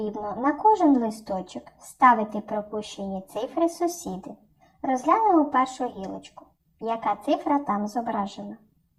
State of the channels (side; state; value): both; identical; correlation 1.00